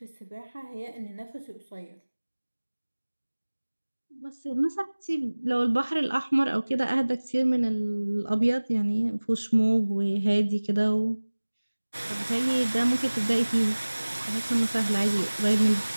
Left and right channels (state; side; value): inverted; both; correlation -1.00